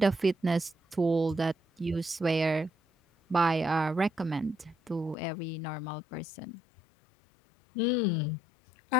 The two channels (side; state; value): right; drops out; at 5.2 s